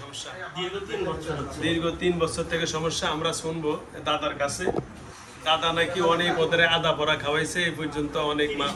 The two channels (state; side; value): identical; both; correlation 1.00